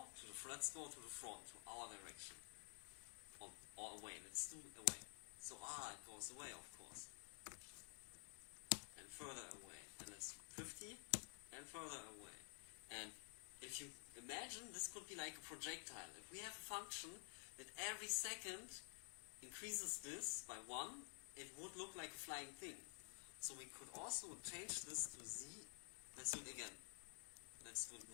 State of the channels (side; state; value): right; silent; digital silence